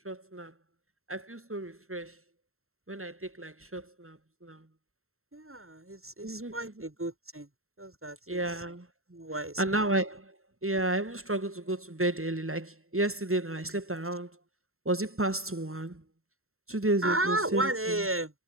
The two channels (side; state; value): left; late; 0.62 ms